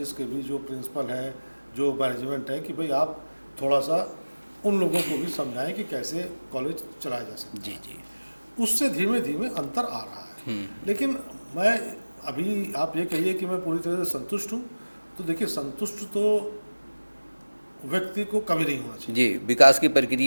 के भी जो प्रिंसिपल हैं, जो मैनेजमेंट है, कि भाई आप थोड़ा सा उन लोगों को भी समझाएं कि कैसे कॉलेज चलाया जा सकता है। जी जी। उससे धीमे धीमे अंतर आ रहा है। लेकिन मैं अभी आप ये कहिए कि मैं पूरी तरह से संतुष्ट हूँ, तो देखिए संतुष्ट तो व्यक्ति को कभी नहीं होना चाहिए। जी, विकास की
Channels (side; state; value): both; inverted; correlation -1.00